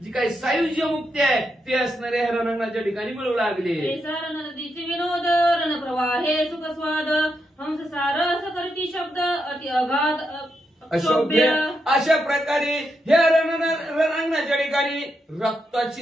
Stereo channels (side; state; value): both; normal; correlation 0.83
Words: जी काही सायुज्य मुक्ती आहे ते असणाऱ्या रणांगणाच्या ठिकाणी मिळू लागले. नदीचे विनोद रण प्रवाहे सुखस्वाद हंस सारस करती शब्द अति अगाध अशोभ्य अशा प्रकारे ह्या रणांगणाच्या ठिकाणी रक्ताची